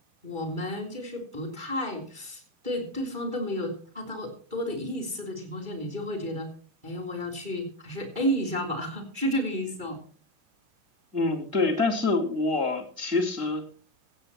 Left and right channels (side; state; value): left; late; 2.3 ms